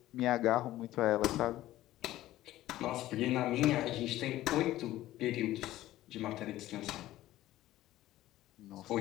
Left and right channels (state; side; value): quieter; right; 15.1 dB